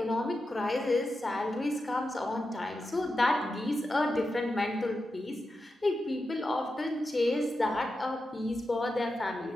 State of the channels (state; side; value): normal; both; correlation 0.90